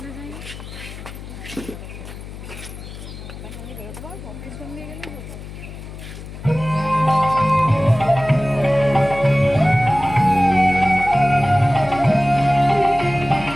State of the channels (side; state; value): left; noise; hum, 12 dB below the sound